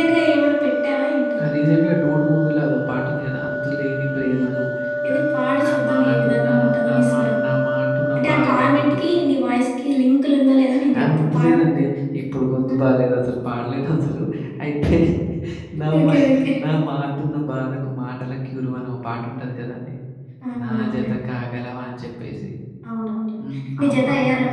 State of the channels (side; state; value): both; identical; correlation 1.00